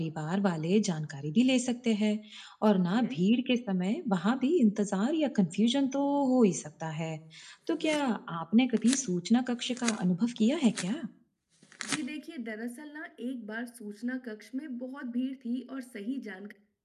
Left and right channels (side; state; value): both; identical; correlation 1.00